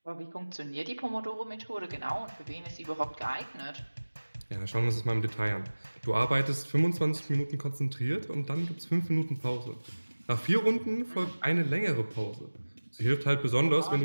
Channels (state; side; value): inverted; both; correlation -1.00